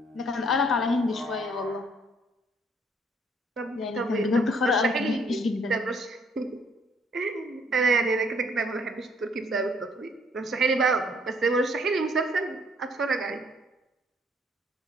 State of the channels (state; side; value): normal; both; correlation 0.64